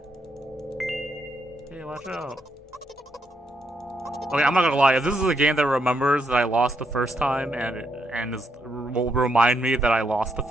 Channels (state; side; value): normal; both; correlation 0.78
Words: Hey, watch out. Okay, I'm not gonna lie, if this is a game that remembers that I lost the first time and will remind me that I lost the